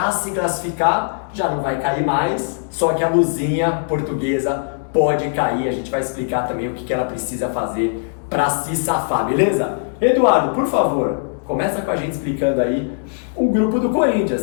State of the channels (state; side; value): silent; right; 66 dB below the other